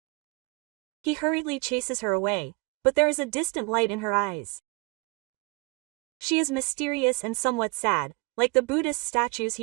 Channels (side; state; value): left; quieter; 29.4 dB